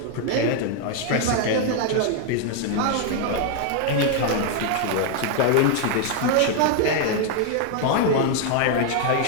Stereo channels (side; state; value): both; different; correlation 0.00